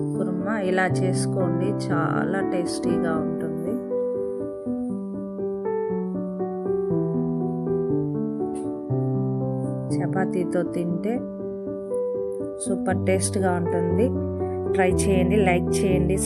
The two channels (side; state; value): both; identical; correlation 1.00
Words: కుర్మా. ఇలా చేసుకోండి, చాలా టేస్టీగా ఉంటుంది. చపాతీతో తింటే సూపర్ టేస్ట్గా ఉంటుంది. ట్రై చేయండి, లైక్ చేయండి,